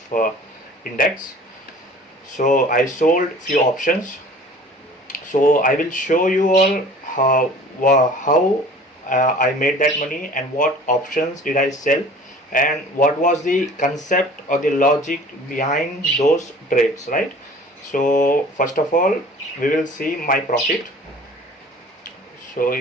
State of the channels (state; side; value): normal; both; correlation 0.46